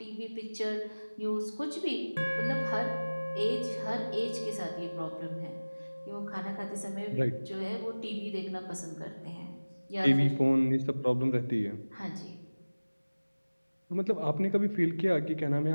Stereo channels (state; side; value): inverted; both; correlation -1.00